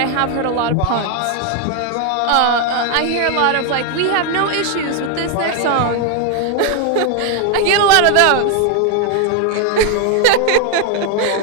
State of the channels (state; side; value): different; both; correlation 0.01